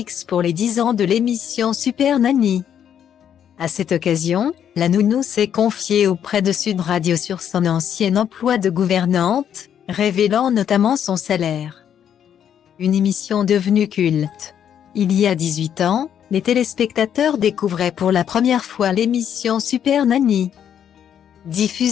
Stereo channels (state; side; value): quieter; right; 9.1 dB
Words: pour les 10 ans de l'émission Super Nanny. À cette occasion, la nounou s'est confiée auprès de Sud Radio sur son ancien emploi de gouvernante, révélant notamment son salaire. Une émission devenue culte. Il y a 18 ans, les téléspectateurs découvraient pour la première fois l'émission Super Nanny.